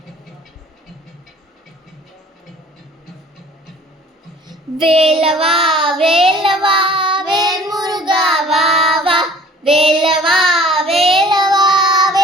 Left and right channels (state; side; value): normal; both; correlation 0.50